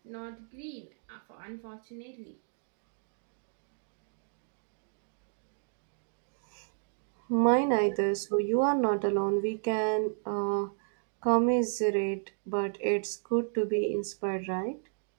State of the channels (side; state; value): left; silent; digital silence